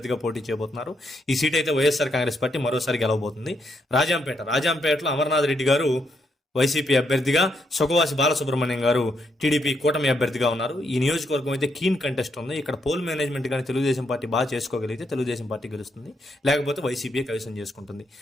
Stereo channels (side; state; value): both; normal; correlation 0.77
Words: పోటీ చేయబోతున్నారు. ఈ సీట్ అయితే వైఎస్ఆర్ కాంగ్రెస్ పార్టీ మరోసారి గెలవబోతుంది. రాజంపేటలో అమర్నాథ్ రెడ్డి గారు వైసీపీ అభ్యర్థిగా, సుఖవాసి బాలసుబ్రహ్మణ్యం గారు టీడీపీ కూటమి అభ్యర్థిగా ఉన్నారు. ఈ నియోజకవర్గం అయితే కీన్ కంటెస్ట్ ఉంది. ఇక్కడ పోల్ మేనేజ్మెంట్ కానీ తెలుగుదేశం పార్టీ బాగా చేసుకోగలిగితే తెలుగుదేశం పార్టీ గెలుస్తుంది, లేకపోతే వైసీపీ కైవసం చేసుకుంటుంది.